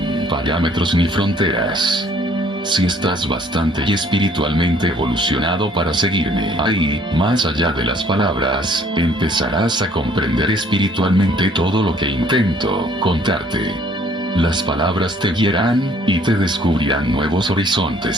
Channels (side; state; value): both; normal; correlation 0.60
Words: parámetros ni fronteras. Si estás bastante y espiritualmente evolucionado para seguirme ahí, más allá de las palabras, empezarás a comprender espiritualmente todo lo que intento contarte. Las palabras te guiarán, y te descubrirán nuevos